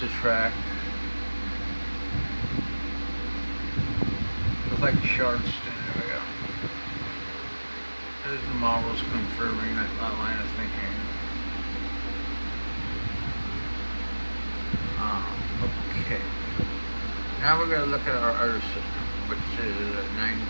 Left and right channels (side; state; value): both; inverted; correlation -1.00